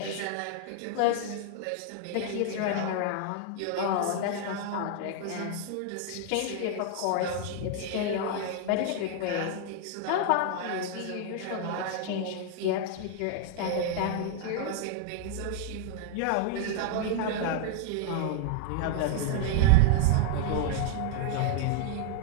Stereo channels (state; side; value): different; both; correlation 0.00